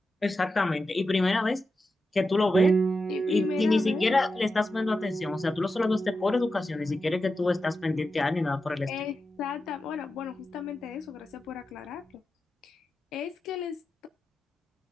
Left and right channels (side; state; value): both; normal; correlation 0.90